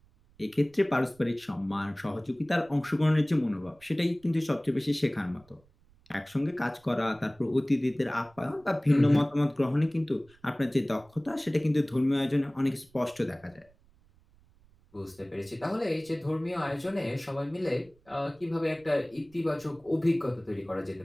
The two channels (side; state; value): right; noise; rumble, 30 dB below the sound